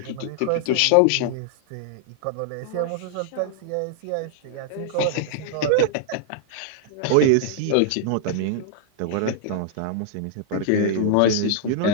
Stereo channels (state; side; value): different; both; correlation -0.01